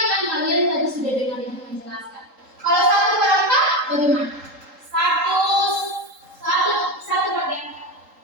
kan kalian tadi sudah dengar ibu menjelaskan. Kalau 1/4 bagaimana? Satu bagian.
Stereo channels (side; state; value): left; late; 3.8 ms